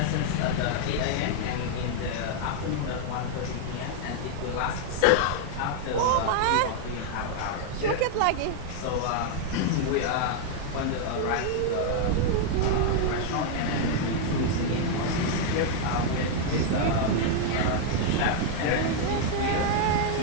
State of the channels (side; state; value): both; different; correlation 0.00